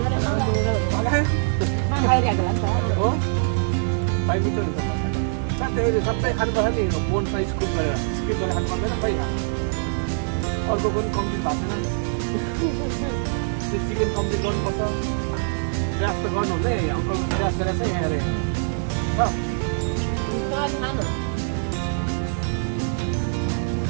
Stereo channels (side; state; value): left; silent; digital silence